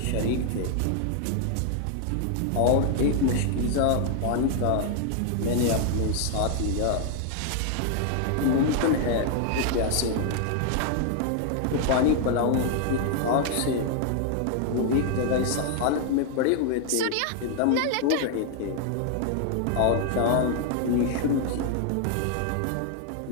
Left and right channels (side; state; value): both; different; correlation 0.00